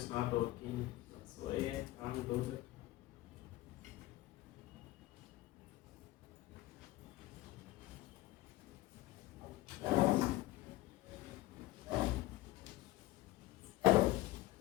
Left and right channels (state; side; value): quieter; right; 17.4 dB